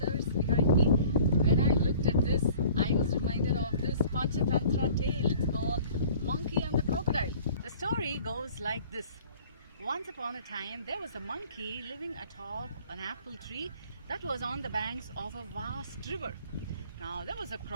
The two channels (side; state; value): both; inverted; correlation -0.49